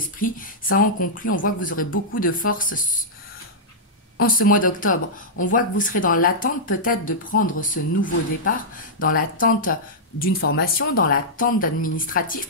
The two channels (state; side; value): normal; both; correlation -0.10